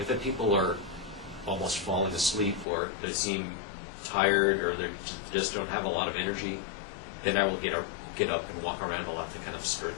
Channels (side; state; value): right; drops out; at 2.7 s